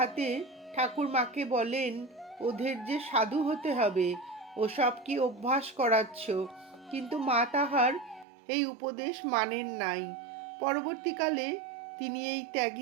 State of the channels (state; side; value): drops out; left; at 8.2 s